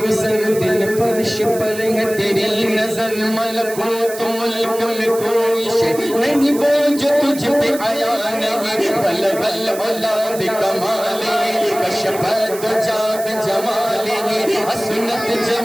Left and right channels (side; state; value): right; noise; hiss, 13 dB below the sound